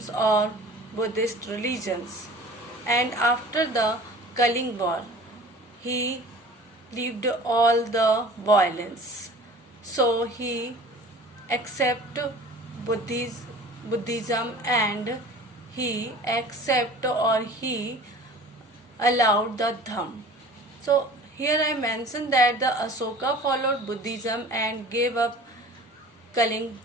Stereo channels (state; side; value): normal; both; correlation 0.43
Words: or Buddhist religions, and after the Kaling War, he left all the violence. So he accepted Buddhism and he he allowed the Dham. So here I mentioned that the Asoka followed Buddhism and gave up Kaling